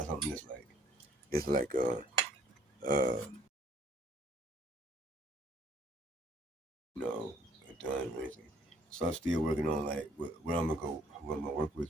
something that's like it's like you know, done or anything. So I'm still working on like what I'm gonna go, what I'm gonna work with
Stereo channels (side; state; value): both; normal; correlation 0.61